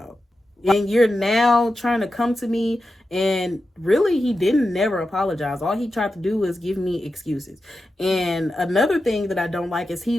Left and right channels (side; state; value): both; normal; correlation 0.91